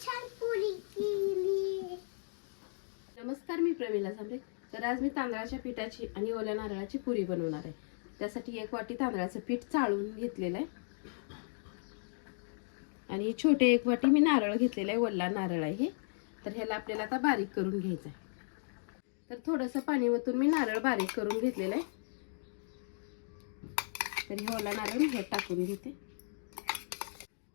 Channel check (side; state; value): right; silent; digital silence